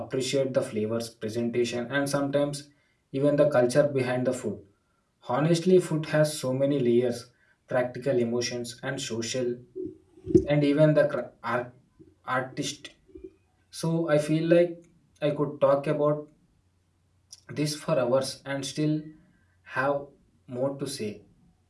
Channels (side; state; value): both; identical; correlation 1.00